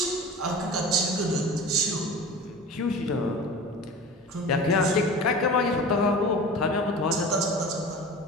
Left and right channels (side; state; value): both; normal; correlation 0.36